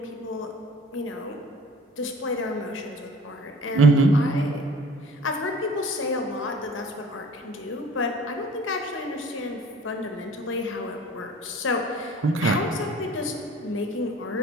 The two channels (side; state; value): both; normal; correlation 0.47